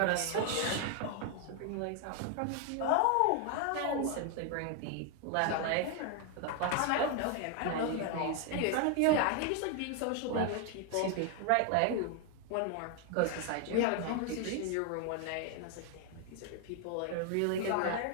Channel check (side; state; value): both; different; correlation 0.00